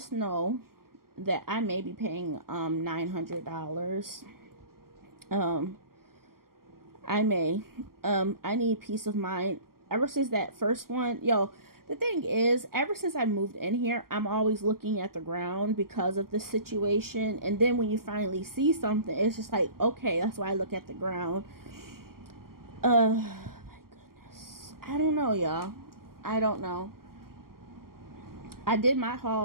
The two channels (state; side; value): late; left; 0.92 ms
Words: know that I may be paying $900. I may. I need peace of mind. Ever since that first one, yo, the thing is, ever since I moved in here, I'm always looking at the ground because of the situation. And then when you finally see something, it's just like, okay, that's why I look at the ground. My goodness. I don't know, y'all. I don't know. I did my